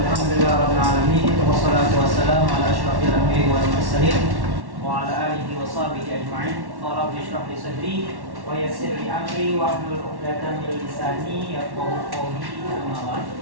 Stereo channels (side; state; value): left; late; 1.1 ms